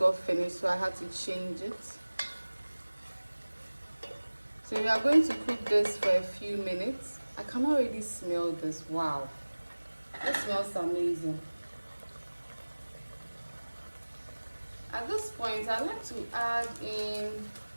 finished, so I had to change it. So we are going to cook this for a few minutes. I can already smell this. Wow, it smells amazing. At this point, I'd like to add in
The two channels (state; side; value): inverted; both; correlation -1.00